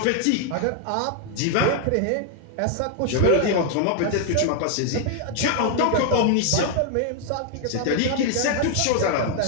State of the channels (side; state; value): both; different; correlation 0.00